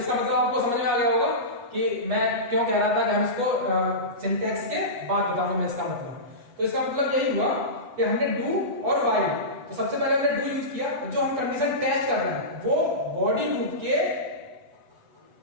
मतलब आपको समझ में आ गया होगा कि मैं क्यों कह रहा था कि हम इसको सिंटैक्स के बाद बताऊंगा मैं इसका मतलब। तो इसका मतलब यही हुआ कि हमने डू और व्हाइल, तो सबसे पहले हमने डू यूज किया, जो हम कंडीशन टेस्ट कर रहे हैं वो बॉडी लूप के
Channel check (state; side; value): late; left; 8.2 ms